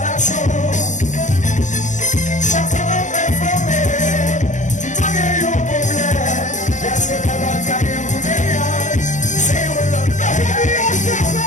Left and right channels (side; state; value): right; late; 0.36 ms